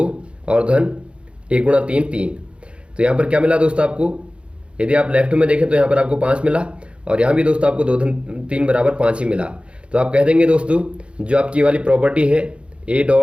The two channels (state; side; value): late; left; 0.058 ms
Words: और धन 1 × 3 3। तो यहाँ पर क्या मिला दोस्तों आपको, यदि आप लेफ्ट में देखें तो यहाँ पर आपको 5 मिला और यहाँ भी दोस्तों आपको 2 धन 3 बराबर 5 ही मिला। तो आप कह देंगे दोस्तों जो आपकी वाली प्रॉपर्टी है ए